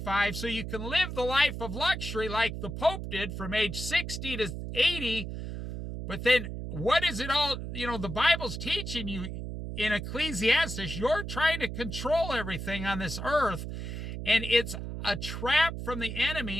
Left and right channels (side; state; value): right; noise; hum, 6 dB below the sound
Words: so you can live the life of luxury like the Pope did from age 60 to 80. But then what is it all, the Bible's teaching you in Ecclesiastes, you're trying to control everything on this earth, and it's a trap from the